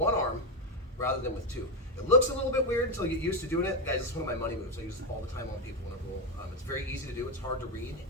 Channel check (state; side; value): normal; both; correlation 0.08